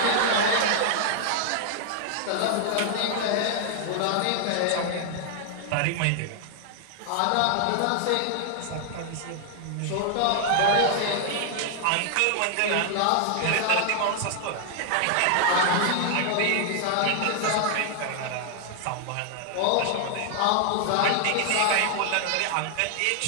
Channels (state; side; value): different; both; correlation 0.00